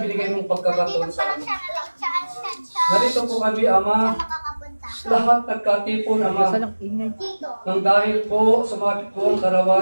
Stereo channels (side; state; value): both; inverted; correlation -1.00